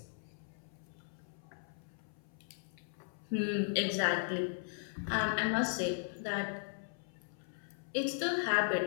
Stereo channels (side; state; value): right; silent; 53 dB below the other